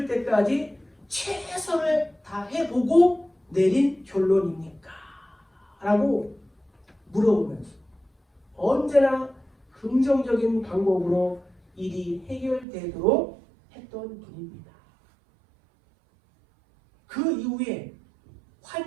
때까지 최선을 다해보고 내린 결론입니까? 라고 물어보면서 언제나 긍정적인 방법으로 일이 해결되도록 했던 분입니다. 그 이후에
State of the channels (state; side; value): drops out; left; at 12.7 s